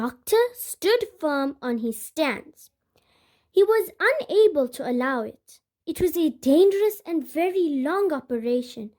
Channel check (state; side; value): identical; both; correlation 1.00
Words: stood firm on his stance. He was unable to allow it. It was a dangerous and very long operation,